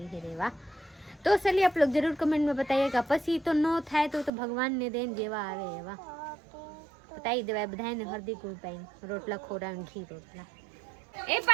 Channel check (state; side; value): drops out; left; at 4.3 s